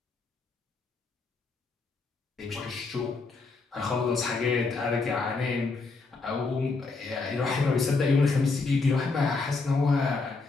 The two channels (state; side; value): quieter; right; 4.0 dB